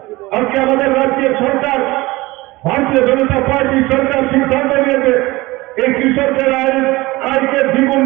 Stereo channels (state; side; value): quieter; left; 20.8 dB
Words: আজকে আমাদের রাজ্যের সরকার, ভারতীয় জনতা পার্টি সরকার সিদ্ধান্ত নিয়েছে এই কৃষকদের আয়কে দ্বিগুণ